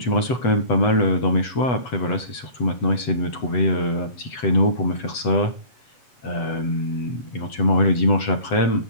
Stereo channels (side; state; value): right; late; 8.0 ms